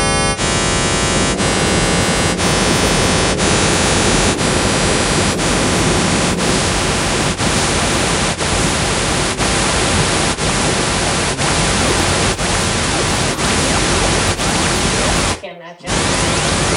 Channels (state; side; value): identical; both; correlation 1.00